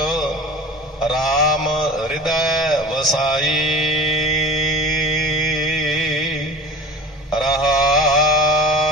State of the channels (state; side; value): normal; both; correlation 0.37